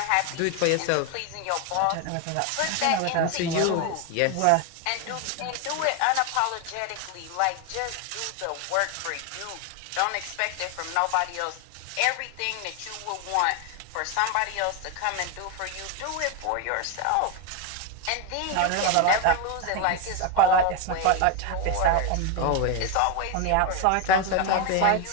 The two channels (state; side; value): different; both; correlation 0.01